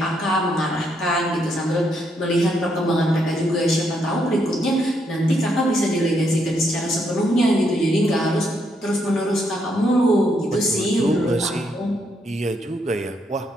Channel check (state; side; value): normal; both; correlation 0.76